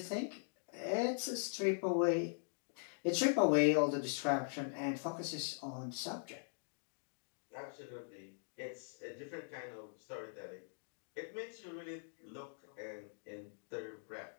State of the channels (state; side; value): silent; right; digital silence